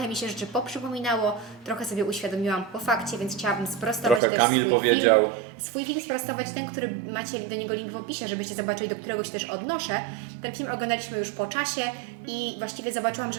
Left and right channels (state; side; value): drops out; left; at 4.2 s